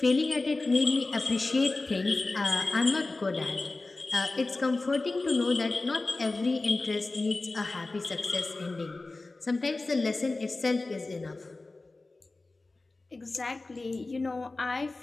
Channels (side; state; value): right; quieter; 3.3 dB